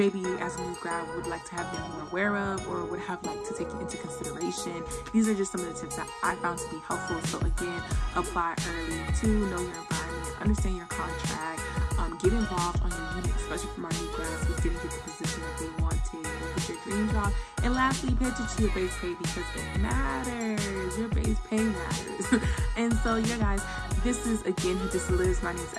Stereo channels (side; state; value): both; identical; correlation 1.00